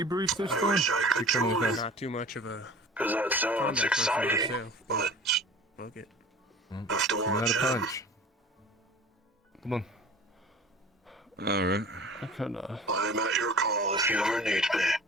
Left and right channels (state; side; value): normal; both; correlation 0.42